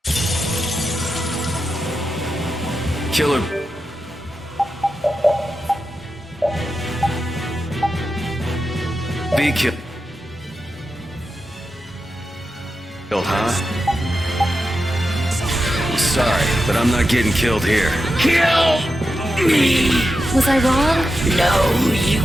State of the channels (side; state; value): both; normal; correlation 0.89